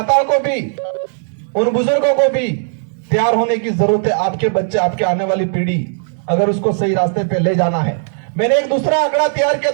को भी, उन बुजुर्गों को भी तैयार होने की जरूरत है। आपके बच्चे, आपके आने वाली पीढ़ी अगर उसको सही रास्ते पे ले जाना है। मैंने एक दूसरा आंकड़ा तैयार किया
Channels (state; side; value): silent; left; digital silence